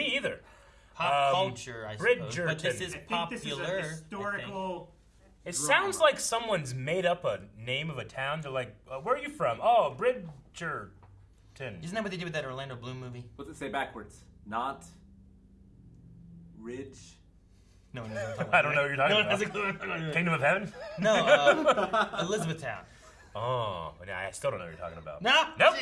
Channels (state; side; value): identical; both; correlation 1.00